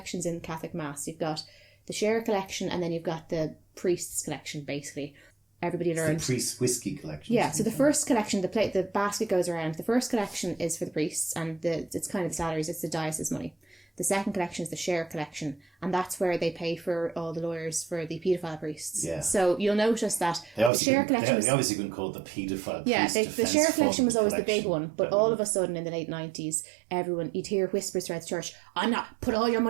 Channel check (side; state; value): left; drops out; at 20.7 s